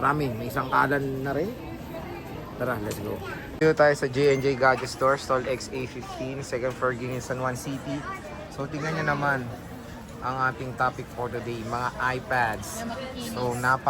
may isang kalan na rin. Tara, let's go. Dito tayo sa J&J Gadget Store, stall XA15, second floor, Greenwich, San Juan City. So tingnan nyo naman ang ating topic for today, mga iPads. So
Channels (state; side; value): identical; both; correlation 1.00